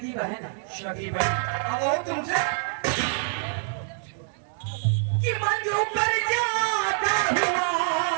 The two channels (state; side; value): silent; left; digital silence